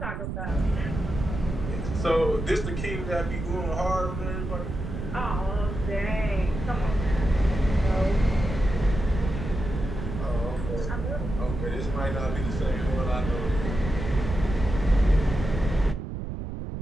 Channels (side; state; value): right; noise; rumble, 5 dB below the sound